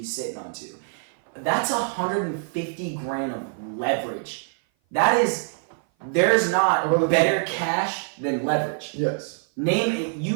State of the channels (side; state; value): left; silent; 56 dB below the other